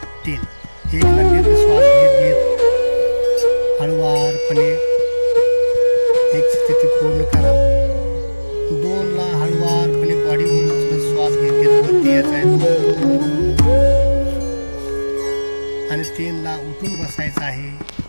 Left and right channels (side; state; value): both; inverted; correlation -1.00